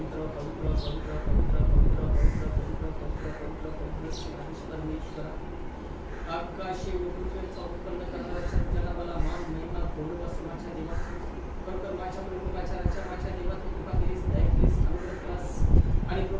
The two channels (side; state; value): both; identical; correlation 1.00